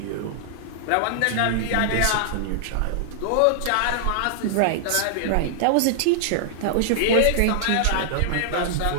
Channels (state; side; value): different; both; correlation -0.01